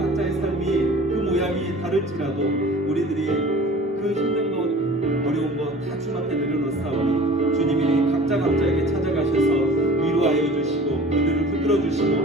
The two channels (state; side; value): normal; both; correlation 0.44